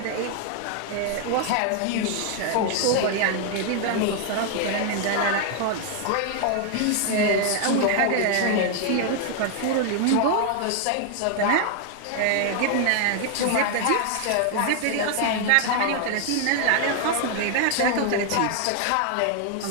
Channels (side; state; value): both; different; correlation 0.00